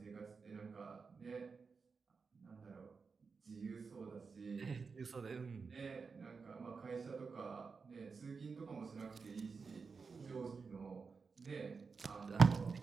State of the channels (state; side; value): quieter; left; 5.0 dB